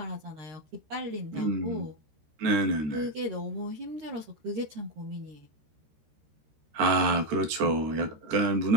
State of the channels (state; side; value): late; left; 13 ms